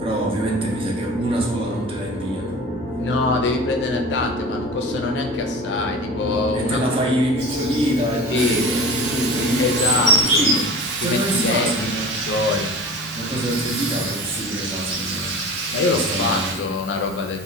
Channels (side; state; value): left; noise; hum, 26 dB below the sound